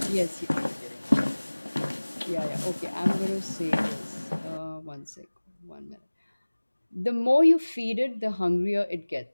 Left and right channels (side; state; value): both; inverted; correlation -1.00